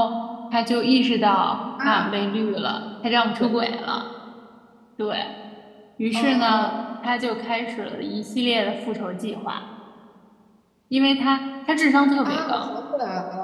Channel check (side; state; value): both; identical; correlation 1.00